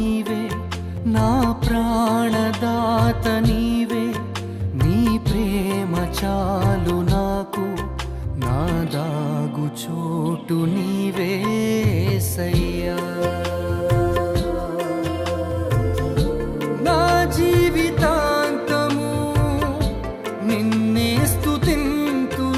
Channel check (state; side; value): identical; both; correlation 1.00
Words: నా ప్రాణదాత నీవే, నీ ప్రేమ చాలు నాకు, నా దాగు చోటు నీవే యేసయ్యా. నా జీవితాంతము నిన్నే